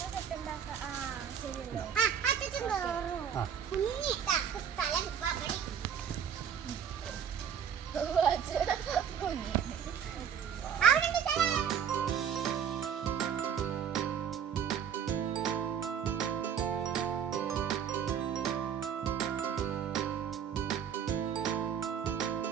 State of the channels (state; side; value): quieter; left; 8.1 dB